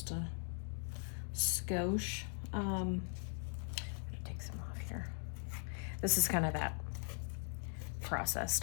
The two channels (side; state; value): right; silent; 51 dB below the other